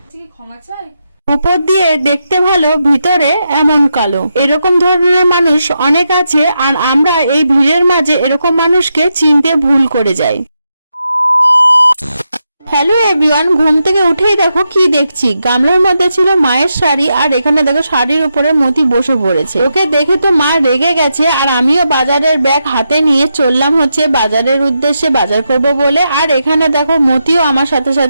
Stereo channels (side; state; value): both; inverted; correlation -0.85